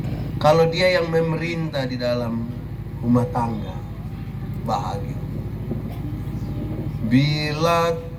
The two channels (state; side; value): identical; both; correlation 1.00